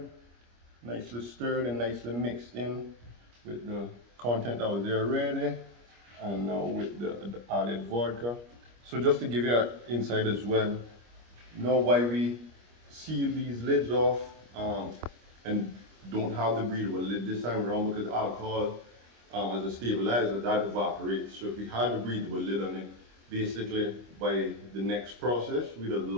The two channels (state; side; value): late; left; 25 ms